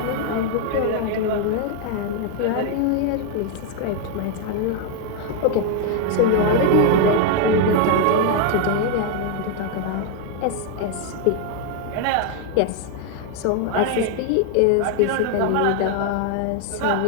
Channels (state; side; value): different; both; correlation 0.00